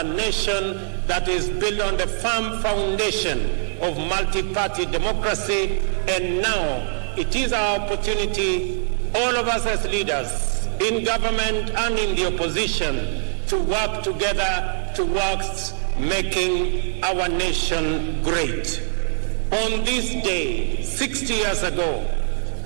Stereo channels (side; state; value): left; silent; 64 dB below the other